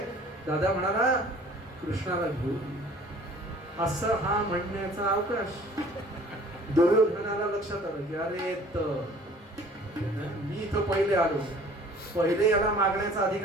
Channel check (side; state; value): both; normal; correlation 0.51